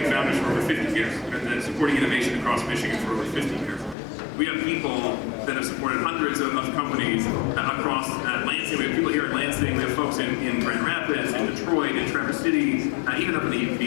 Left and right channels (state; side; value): drops out; right; at 4.0 s